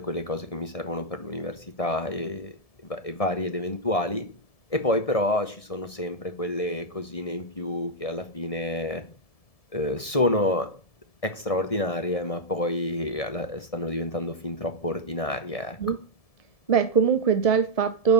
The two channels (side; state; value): right; late; 1.6 ms